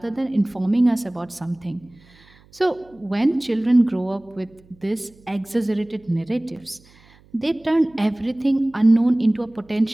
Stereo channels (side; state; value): right; noise; hum, 28 dB below the sound